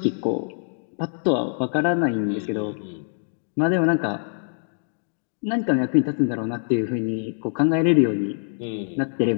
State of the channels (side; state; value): right; silent; digital silence